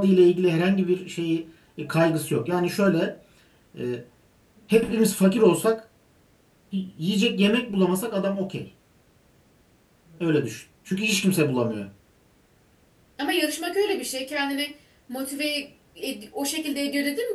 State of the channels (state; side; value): identical; both; correlation 1.00